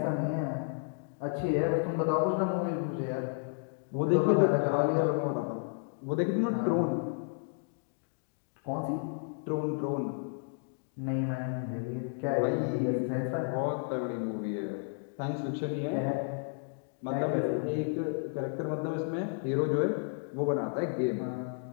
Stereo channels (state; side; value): silent; right; 56 dB below the other